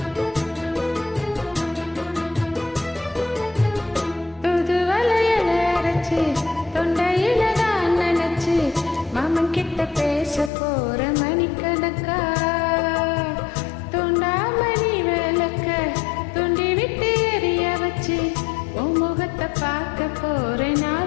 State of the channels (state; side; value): drops out; right; at 10.5 s